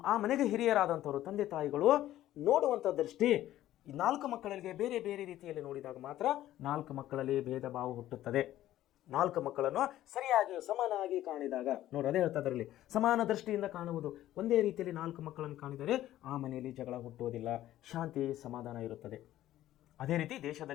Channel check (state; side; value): quieter; right; 13.7 dB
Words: ಆ ಮನೆಗೆ ಹಿರಿಯರಾದಂಥವರು ತಂದೆ ತಾಯಿಗಳು ನೋಡುವಂಥ ದೃಷ್ಟಿ 4 ಮಕ್ಕಳಿಗೆ ಬೇರೆ ಬೇರೆ ರೀತಿಯಲ್ಲಿ ನೋಡಿದಾಗ ಮಾತ್ರ 4 ಮಕ್ಕಳಲ್ಲಿ ಭೇದ ಭಾವ ಹುಟ್ಟುತ್ತದೆ. 4 ಮಕ್ಕಳನ್ನು ಸರಿಯಾಗಿ ಸಮಾನಾಗಿ ಕಾಣಿದಾಗ, ನೋಡಿ ಅದೇ ಹೇಳ್ತಾ ಇದರಲ್ಲಿ, ಸಮಾನ ದೃಷ್ಟಿಯಿಂದ ಕಾಣುವುದು. ಒಂದೇ ರೀತಿಯಲ್ಲಿ 4 ಮಕ್ಕಳನ್ನು ಕಾಣಿದರೆ ಆ ಮನೆಯಲ್ಲಿ ಜಗಳ ಹುಟ್ಟುವುದಿಲ್ಲ, ಶಾಂತಿ ಸಮಾಧಾನ ಇರುತ್ತದೆ. ಅದೇ ರೀತಿ